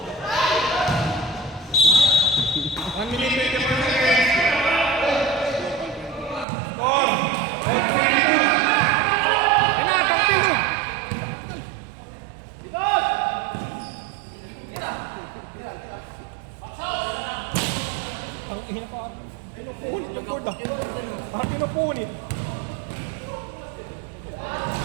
One minute, 20 seconds. Score. Yan na, tag-build. Ang ina pa. Pinupunit yung board ah. Pinupunit.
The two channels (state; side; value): drops out; left; at 6.5 s